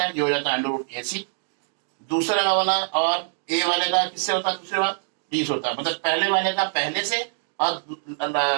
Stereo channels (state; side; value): silent; left; 62 dB below the other